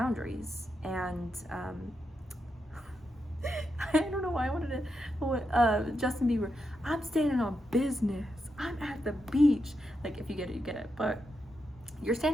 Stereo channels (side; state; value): both; normal; correlation 0.85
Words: And I don't know why I wanted to Justin Bieber, I'm standing on business, I'm at the beach. Like, if you get it, you get it. But you're